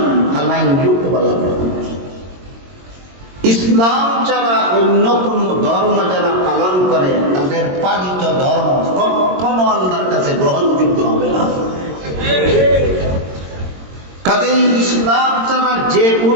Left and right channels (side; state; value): left; late; 22 ms